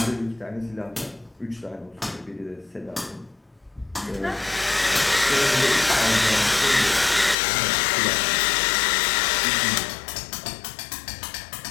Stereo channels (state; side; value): drops out; right; at 7.4 s